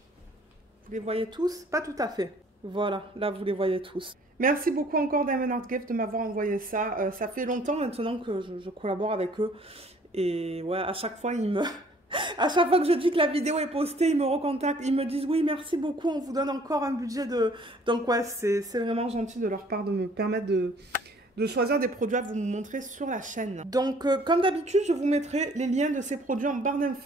Vous les voyez tous? Pas tout à fait. Voilà, là vous les voyez tous. Merci beaucoup encore Diamond Art Gift de m'avoir envoyé ça. Ça fait longtemps maintenant que je collabore avec eux. Et ouais, à chaque fois, à chaque fois que je dis que la vidéo est postée, ils me recontactent. Ils me disent oui, merci beaucoup, on vous donne encore un budget de... Donc ouais, c'est vraiment gentil de leur part de me permettre de choisir des produits à vous montrer sur la chaîne. Donc, comme d'habitude, je vous mettrai les liens de ces produits en barre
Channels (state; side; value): normal; both; correlation 0.57